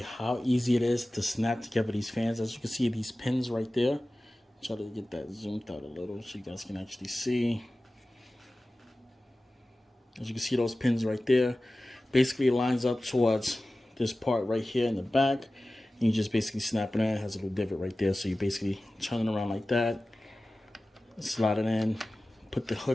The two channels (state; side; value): normal; both; correlation 0.96